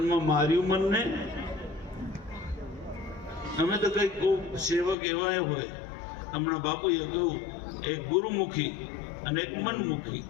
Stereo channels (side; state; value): right; drops out; at 5.0 s